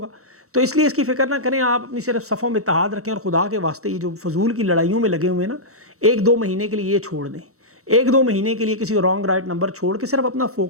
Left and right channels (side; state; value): left; late; 0.64 ms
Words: تو اس لیے اس کی فکر نہ کریں، آپ اپنی صرف صفوں میں اتحاد رکھیں، اور خدا کے واسطے یہ جو فضول کی لڑائیوں میں لگے ہوئے ہیں نا، 1-2 مہینے کے لیے یہ چھوڑ دیں، 1-2 مہینے کے لیے کسی رانگ رائٹ نمبر چھوڑ کے صرف اپنا